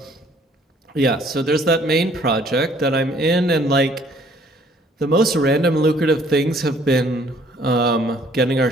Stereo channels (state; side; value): normal; both; correlation 0.60